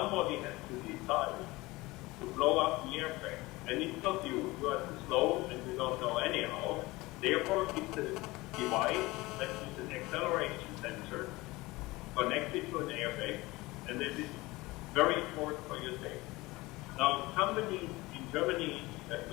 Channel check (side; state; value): right; quieter; 21.1 dB